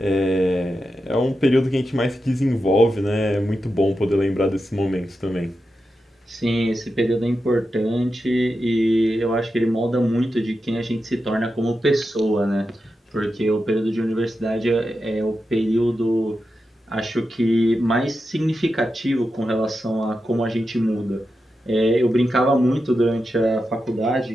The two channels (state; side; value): normal; both; correlation 0.89